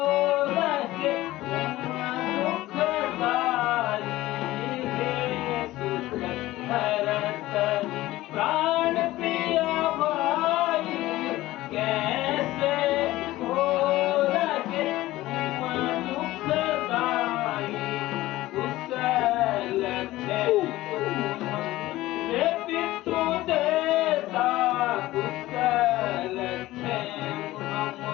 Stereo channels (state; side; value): quieter; right; 16.9 dB